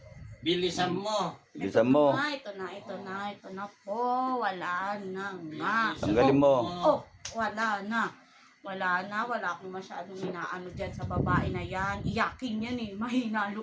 Bilisan mo. Bilisan mo. Ito na po. Wala na nga. Tanggalin mo. Oh, wala na. Wala akong masyadong inaano dyan sa babae na yan. Iyakin yan eh. Mahina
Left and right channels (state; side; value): identical; both; correlation 1.00